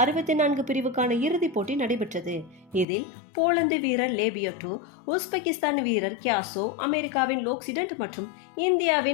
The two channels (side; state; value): right; drops out; at 2.9 s